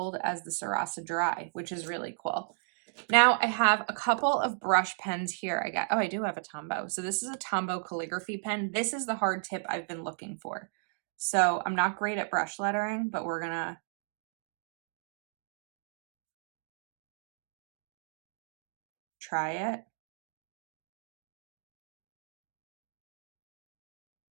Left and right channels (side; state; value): left; silent; digital silence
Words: as the Sarasa Dry, which is really cool. Now I have a couple of brush pens here. I do have a Tombow. So this is a Tombow calligraphy pen. This is the hard tip I've been looking for. So I'm not great at brush lettering, but we're gonna try it.